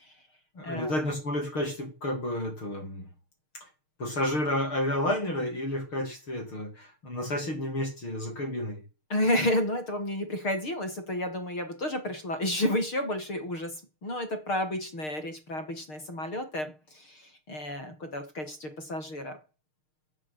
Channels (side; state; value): right; late; 6.5 ms